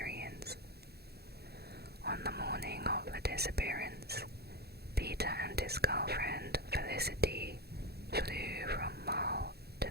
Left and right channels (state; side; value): late; left; 0.47 ms